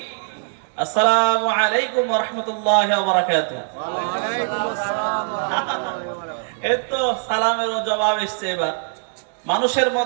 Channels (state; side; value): silent; left; digital silence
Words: আসসালামু আলাইকুম ওয়া রাহমাতুল্লাহি ওয়া বারাকাতুহু। ওয়ালাইকুম আসসালাম ওয়া রাহমাতুল্লাহি ওয়া বারাকাতুহু। এই তো সালামেরও জবাব এসছে। এবার মানুষের